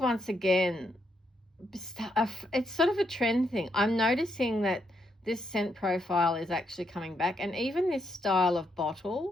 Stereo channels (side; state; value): both; normal; correlation 0.78